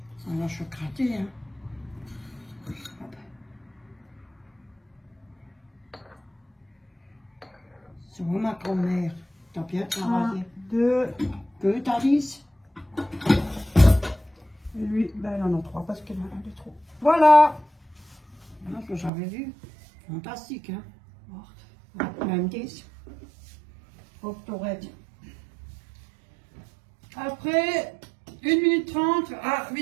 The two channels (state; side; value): drops out; left; at 19.1 s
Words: Alors, je vais gratter, hein. Hop. C'est moi, ma grand-mère. T'as bien 1, travaillé. 2, Que t'as dit? et lui, ben il en a 3 parce qu'il y en a un de trop. Voilà! Ah, ce que j'avais vu. Fantastique, hein. Hop, même 10. Hop, t'aurais dit. Après, 1 minute 30 à